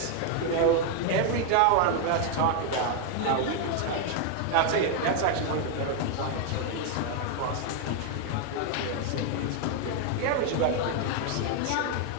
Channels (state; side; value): different; both; correlation 0.00